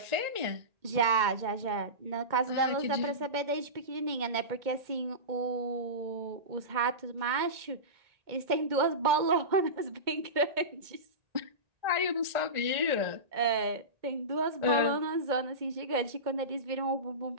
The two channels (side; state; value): left; late; 2.1 ms